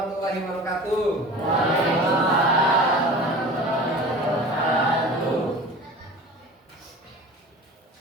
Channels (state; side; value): normal; both; correlation 0.38